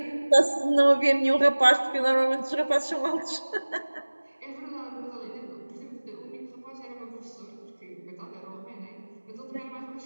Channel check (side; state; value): both; inverted; correlation -1.00